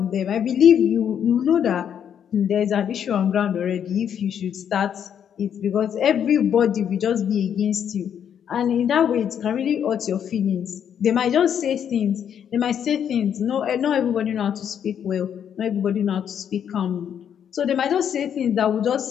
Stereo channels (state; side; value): quieter; right; 8.7 dB